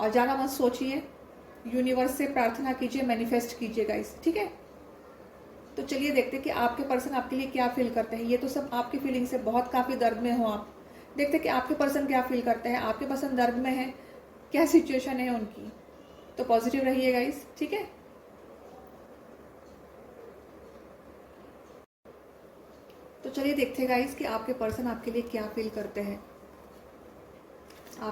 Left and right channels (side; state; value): both; identical; correlation 1.00